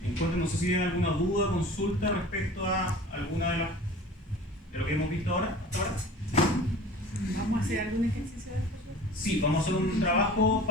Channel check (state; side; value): normal; both; correlation 0.42